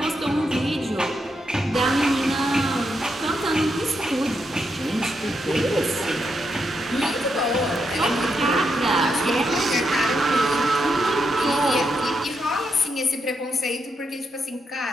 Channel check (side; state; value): both; normal; correlation 0.82